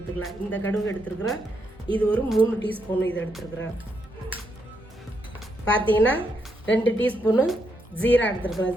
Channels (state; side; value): normal; both; correlation 0.79